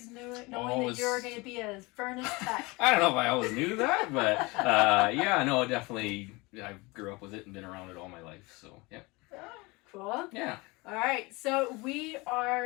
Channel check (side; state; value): right; quieter; 24.6 dB